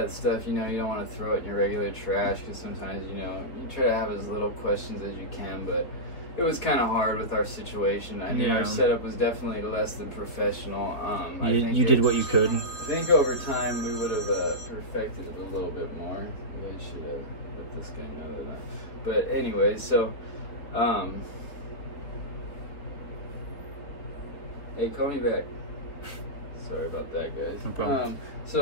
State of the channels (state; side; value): late; right; 4.3 ms